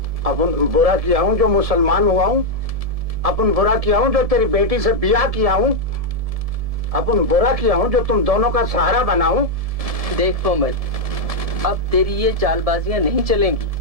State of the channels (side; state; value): left; late; 1.7 ms